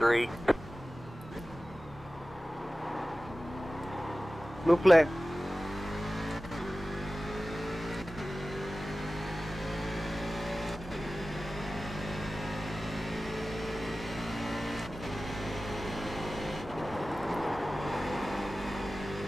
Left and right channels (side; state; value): both; normal; correlation 0.96